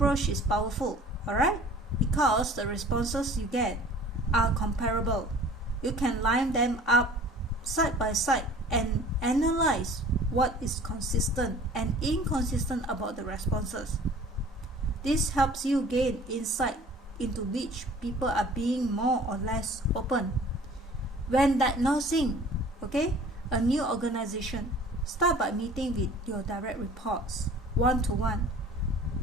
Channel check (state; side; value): normal; both; correlation 0.48